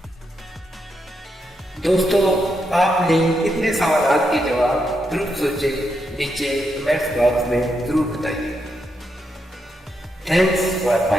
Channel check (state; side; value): normal; both; correlation 0.82